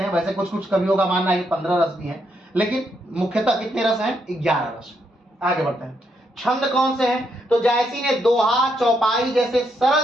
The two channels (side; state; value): both; normal; correlation 0.78